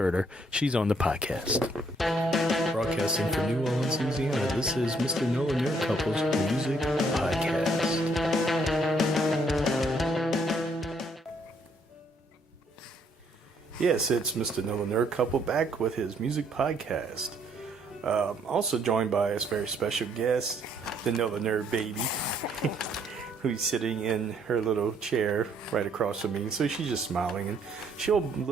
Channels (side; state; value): both; normal; correlation 0.68